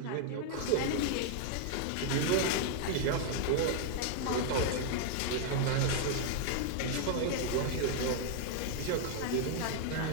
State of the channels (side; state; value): both; different; correlation 0.00